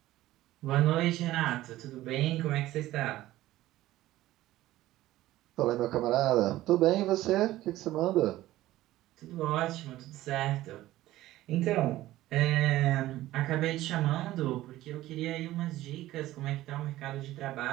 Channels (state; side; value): quieter; left; 15.6 dB